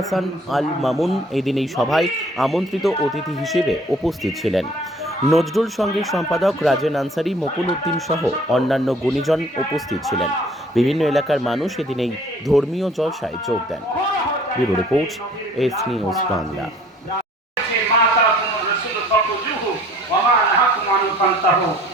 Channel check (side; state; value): both; normal; correlation 0.54